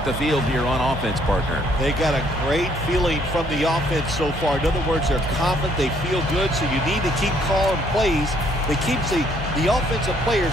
the field here on offense, partner. They got a great feeling from the offense so far. In other words, they're confident, they feel good, so you need to keep calling plays that keeps the offensive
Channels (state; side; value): normal; both; correlation 0.66